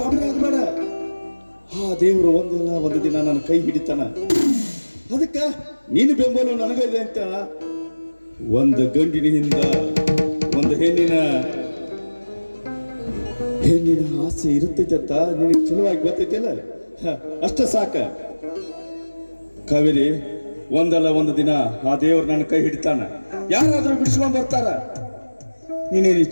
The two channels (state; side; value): inverted; both; correlation -1.00